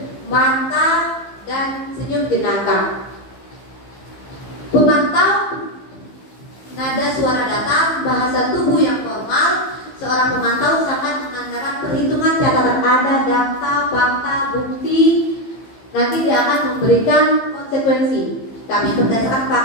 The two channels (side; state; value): right; late; 15 ms